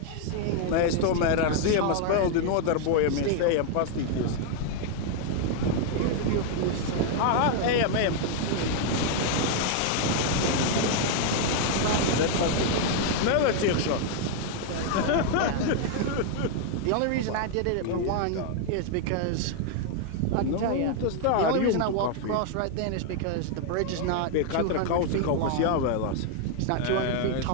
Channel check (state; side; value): different; both; correlation 0.00